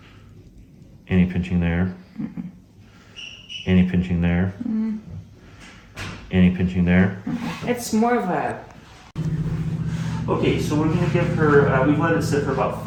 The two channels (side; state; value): both; identical; correlation 1.00